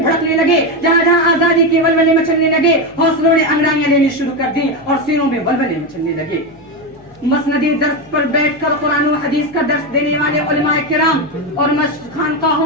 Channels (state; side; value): noise; left; hum, 27 dB below the sound